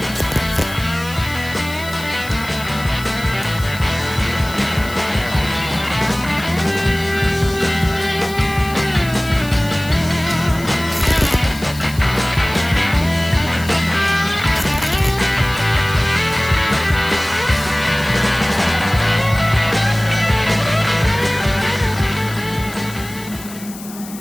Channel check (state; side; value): noise; left; hiss, 15 dB below the sound